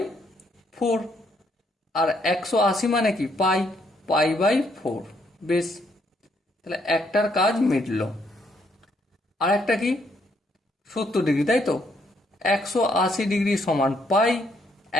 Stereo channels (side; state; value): both; normal; correlation 0.71